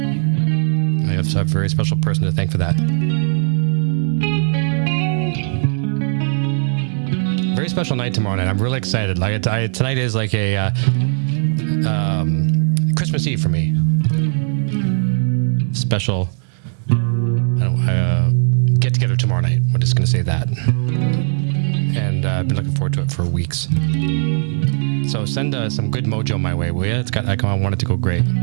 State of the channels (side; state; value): left; silent; 67 dB below the other